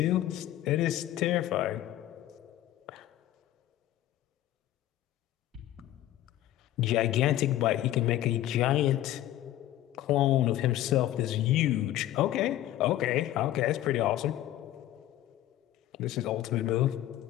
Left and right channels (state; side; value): quieter; right; 13.6 dB